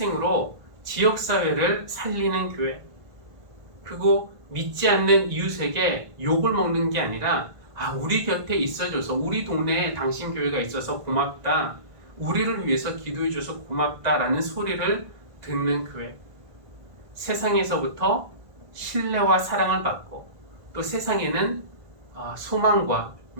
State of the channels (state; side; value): late; left; 1.5 ms